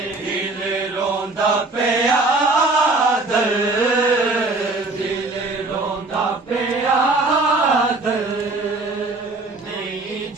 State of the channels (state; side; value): quieter; left; 3.2 dB